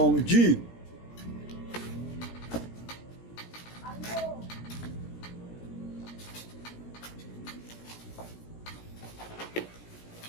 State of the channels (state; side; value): late; right; 17 ms